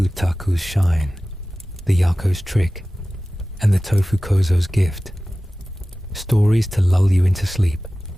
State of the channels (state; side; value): normal; both; correlation 0.96